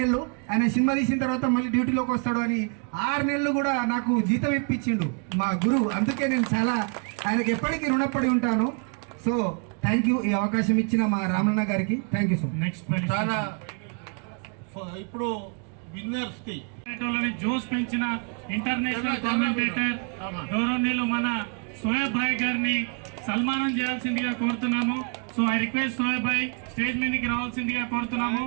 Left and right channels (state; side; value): quieter; left; 39.8 dB